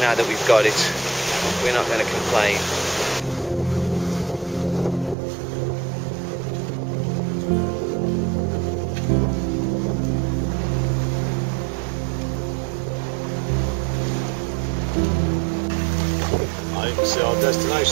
now that we've got it, we're not going to complain. You can see our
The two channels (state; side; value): drops out; left; at 5.2 s